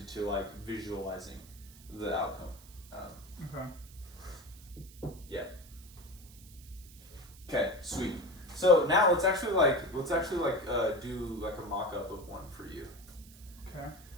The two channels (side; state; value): right; noise; hiss, 21 dB below the sound